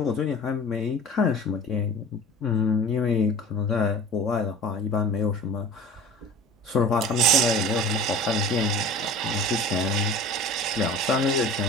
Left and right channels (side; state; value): both; normal; correlation 0.39